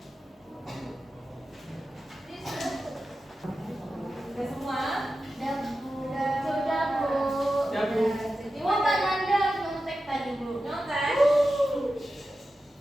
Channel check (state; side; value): normal; both; correlation 0.92